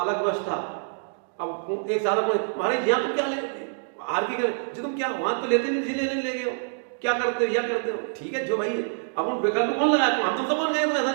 अलग व्यवस्था। अब एक साल महाराज यहाँ तुम क्या ले आर की जी तुम क्या वहां तो लेते नहीं, लेने ले गए हो, क्या करते हो, या करते हो, ठीक है जो भाई है। अब उन विकल्प कौन लगाया, हम तुम सब कौन गए, ऐसा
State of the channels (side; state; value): left; silent; digital silence